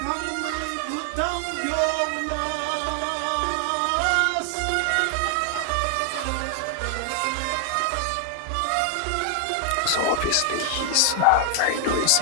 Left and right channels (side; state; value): both; different; correlation 0.00